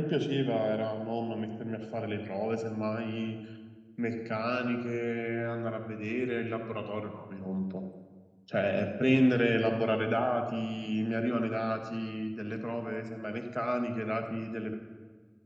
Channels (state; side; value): identical; both; correlation 1.00